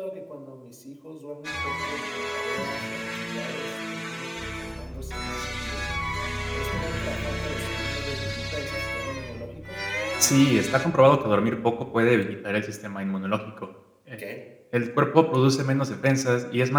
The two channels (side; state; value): both; identical; correlation 1.00